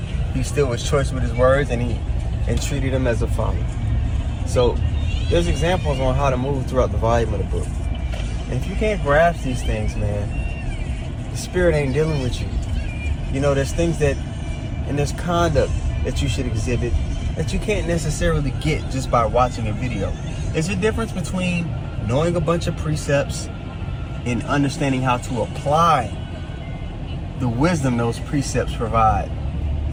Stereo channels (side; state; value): both; identical; correlation 1.00